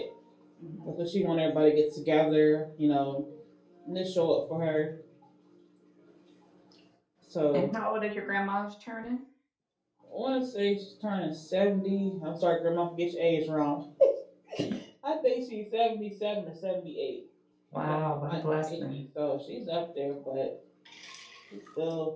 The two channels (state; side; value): identical; both; correlation 1.00